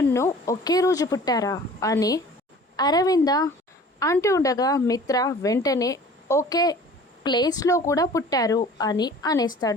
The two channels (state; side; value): normal; both; correlation 0.46